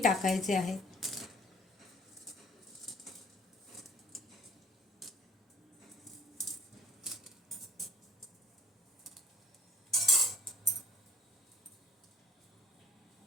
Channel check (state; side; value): normal; both; correlation 0.54